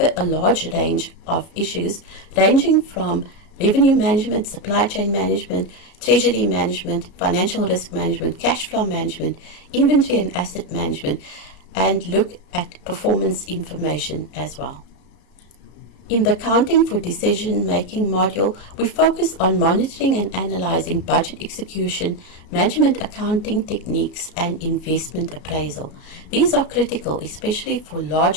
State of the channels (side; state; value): right; late; 33 ms